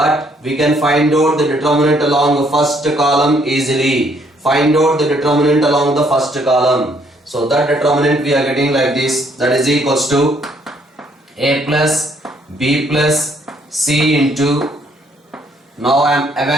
we can find out the determinant along the first column easily. Find out the determinant along the first column. So that determinant we are getting like this, that is equals to A plus B plus C into, now I am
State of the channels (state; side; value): normal; both; correlation 0.67